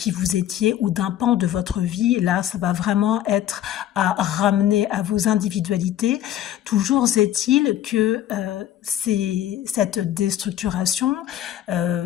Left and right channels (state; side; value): quieter; right; 11.9 dB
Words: vous étiez ou d'un pan de votre vie. Là, ça va vraiment être à ramener à vos individualités. Toujours est-il que c'est cette déstructuration